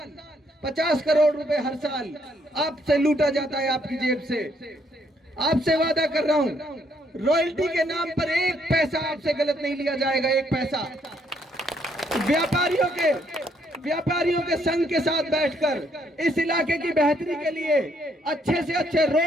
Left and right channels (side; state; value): both; normal; correlation 0.70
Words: 50 करोड़ रुपए हर साल आपसे लूटा जाता है, आपकी जेब से। आपसे वादा कर रहा हूं, रॉयल्टी के नाम पर 1 पैसा आपसे गलत नहीं लिया जाएगा, 1 पैसा। व्यापारियों के संघ के साथ बैठकर इस इलाके की बेहतरी के लिए अच्छे से अच्छे